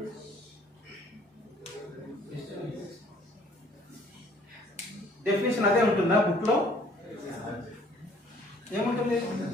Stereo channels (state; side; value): normal; both; correlation 0.58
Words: డెఫినేషన్ అదే ఉంటుందా బుక్ లో? ఏముంటుంది?